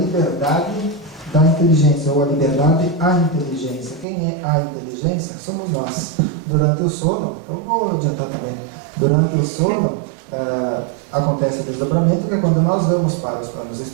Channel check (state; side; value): drops out; left; at 4.0 s